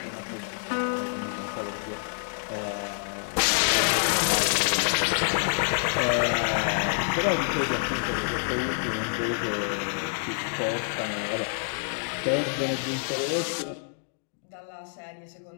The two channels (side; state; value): right; silent; digital silence